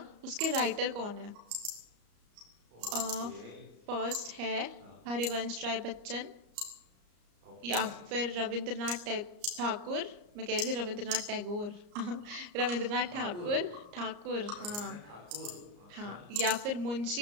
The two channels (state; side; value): late; left; 34 ms